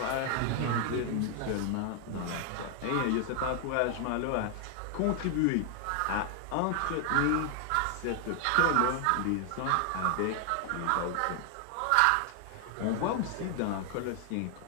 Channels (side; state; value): both; different; correlation 0.00